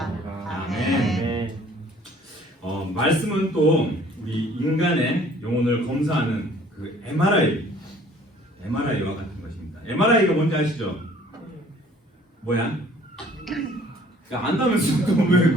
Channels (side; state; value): both; normal; correlation 0.55